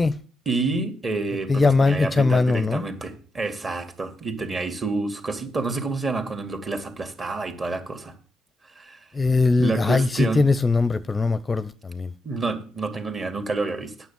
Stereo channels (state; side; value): normal; both; correlation 0.86